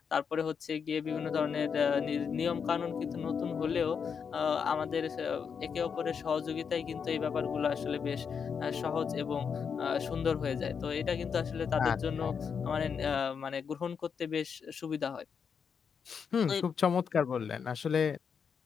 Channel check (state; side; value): quieter; right; 6.5 dB